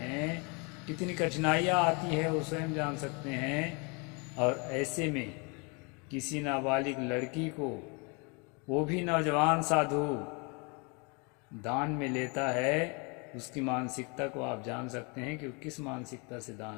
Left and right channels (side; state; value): right; quieter; 31.8 dB